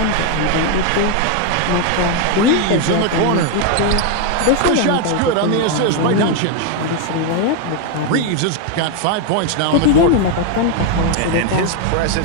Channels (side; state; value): both; different; correlation 0.01